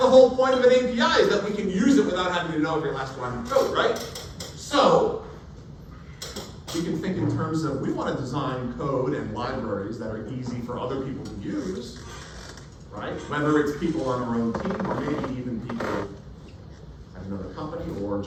whole point of an API, is that we can use it without having to know every last line of code, right? So, we can think in terms of, we want to design code and libraries that are easy for other people to use, right? Whether it's people on our own team, or maybe even people at another company, or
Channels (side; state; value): both; identical; correlation 1.00